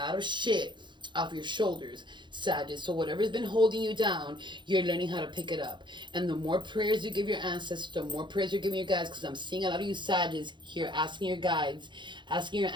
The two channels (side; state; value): left; late; 0.23 ms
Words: of shit off your shoulders, Sagittarius. So whatever's been holding you down, you're learning how to pick it up. And the more prayers you give your ancestors, the more prayers you're giving your guides, because I'm seeing a lot of you Sagittarius here asking your guides, asking your